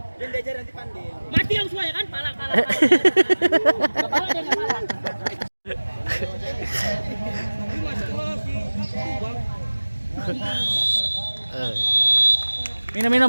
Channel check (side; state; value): both; inverted; correlation -1.00